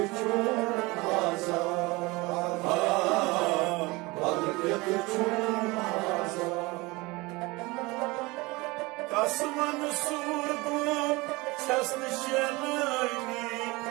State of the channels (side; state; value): left; quieter; 23.4 dB